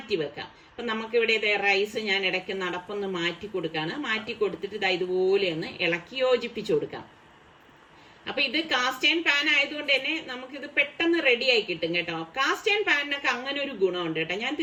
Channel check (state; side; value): identical; both; correlation 1.00